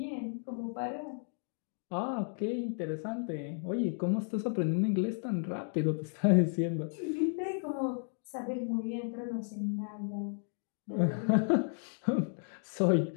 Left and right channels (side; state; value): right; silent; 55 dB below the other